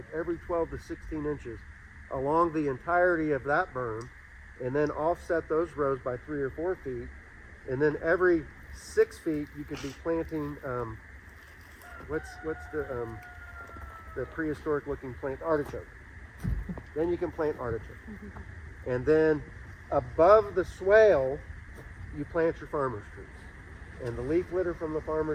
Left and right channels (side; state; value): both; identical; correlation 1.00